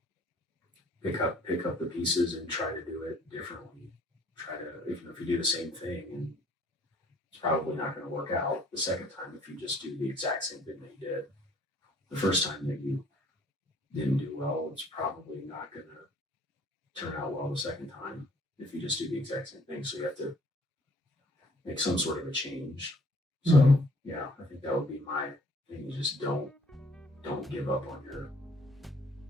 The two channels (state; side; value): normal; both; correlation 0.58